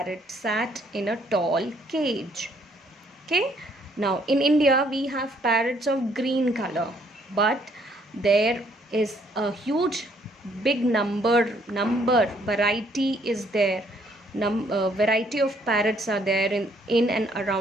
sat in a tall cage. Okay. Now in India we have parrots of green color, but there is a huge big variety is there. Variety of parrots are there in and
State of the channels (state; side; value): normal; both; correlation 0.66